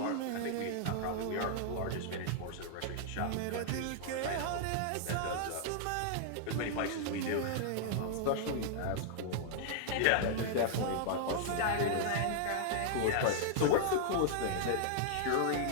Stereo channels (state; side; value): different; both; correlation -0.01